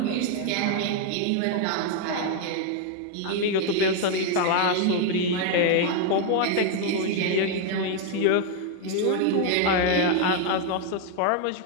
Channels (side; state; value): both; different; correlation 0.01